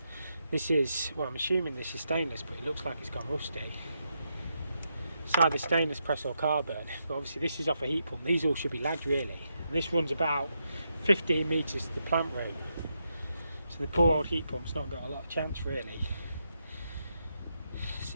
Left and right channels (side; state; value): both; inverted; correlation -0.83